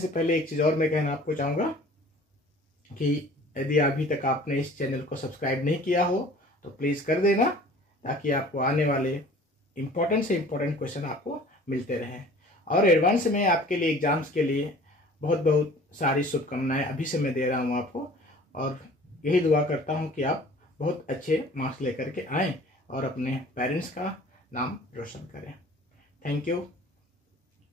पहले एक चीज और मैं कहना आपको चाहूंगा कि यदि अभी तक आपने इस चैनल को सब्सक्राइब नहीं किया हो तो प्लीज कर देना, ताकि आपको आने वाले इंपॉर्टेंट से इंपॉर्टेंट क्वेश्चन आपको मिलते रहें। और एडवांस में आपके लिए एग्जाम्स के लिए बहुत सारी शुभकामनाएं अभी से मैं दे रहा हूं आपको, और यही दुआ करता हूं कि आप बहुत अच्छे मार्क्स लेकर के आएं और अपने पेरेंट्स का नाम रोशन करें। Thank you.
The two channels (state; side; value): normal; both; correlation 0.48